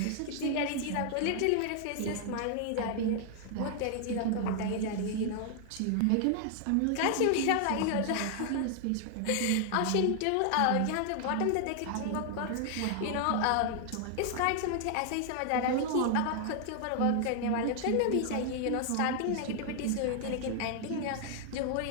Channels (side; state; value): both; different; correlation 0.00